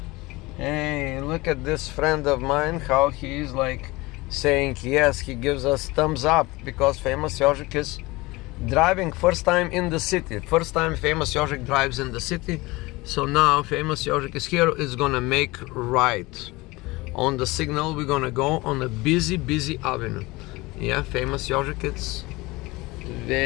Hey, look at this friend of mine, how he is like saying yes, he gives us thumbs up because famous Yožik is driving first time in the city. First time famous Yožik drives in the city. So now famous Yožik is here, is gonna make right. On the signal we're gonna go on a busy avenue. Yeah, famous Yožik, it's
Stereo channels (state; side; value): quieter; right; 22.0 dB